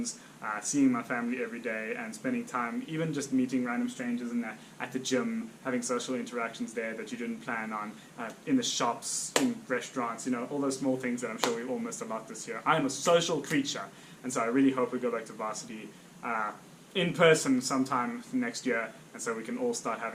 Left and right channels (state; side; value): identical; both; correlation 1.00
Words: seeing my family every day, and spending time even just meeting random strangers at the gym, having social interactions there that you didn't plan on, in the shops, in restaurants, all those small things that I'm sure we all missed a lot this year. I am a social creature, and so I really hope we go back to varsity in person sometime next year, and so we can all start